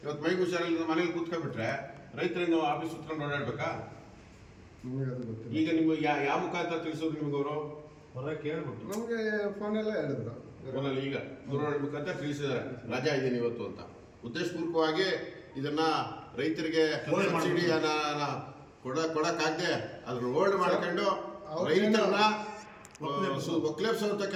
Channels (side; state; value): both; identical; correlation 1.00